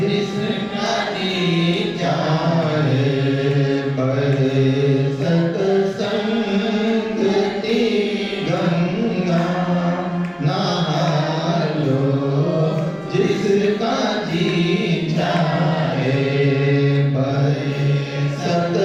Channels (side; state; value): both; identical; correlation 1.00